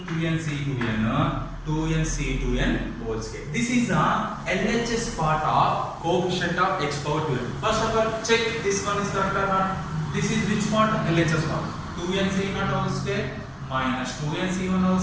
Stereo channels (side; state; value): both; identical; correlation 1.00